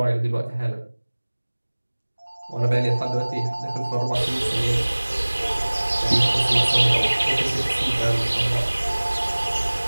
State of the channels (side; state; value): both; inverted; correlation -1.00